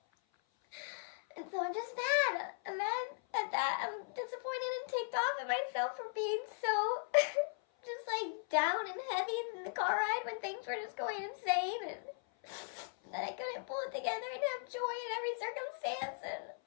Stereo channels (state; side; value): silent; right; 52 dB below the other